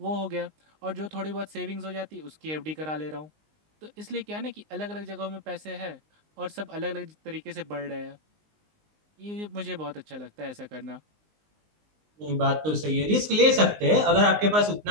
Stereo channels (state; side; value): late; left; 19 ms